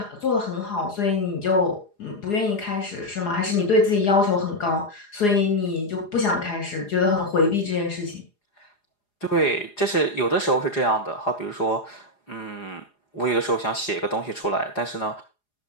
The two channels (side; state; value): right; late; 4.9 ms